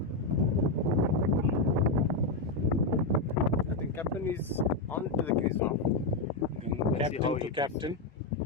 I think captain is on to the crease now. Captain to captain.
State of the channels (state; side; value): quieter; right; 3.2 dB